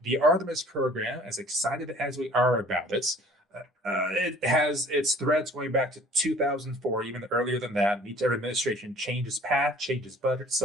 The Artemis program, as excited as we are about it has its threads going back to 2004, even earlier than that. Each administration changes path, changes budget.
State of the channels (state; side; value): normal; both; correlation 0.51